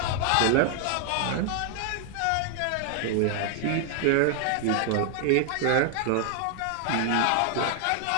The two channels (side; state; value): both; different; correlation 0.00